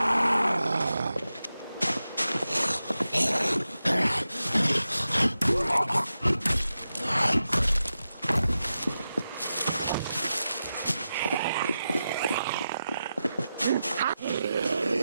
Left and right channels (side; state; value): both; inverted; correlation -0.91